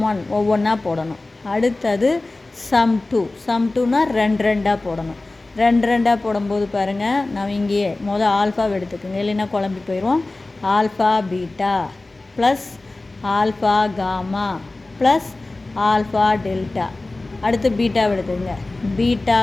ஒன் ஒவ்வொன்றா போடணும். அடுத்தது சம் டூனா 2 போடணும். 2 போடும்போது பாருங்கள், நம்ம இங்கேயே ஆல்ஃபாவை எடுத்துக்கோங்க, இல்லைன்னா குழம்பி போயிடுவோம். Alpha beta plus alpha gamma plus alpha delta. அடுத்து பீட்டாவை எடுத்துக்கோங்க, beta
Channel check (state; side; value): quieter; right; 3.0 dB